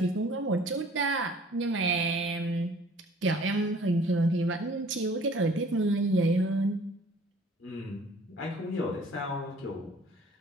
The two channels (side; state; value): both; normal; correlation 0.52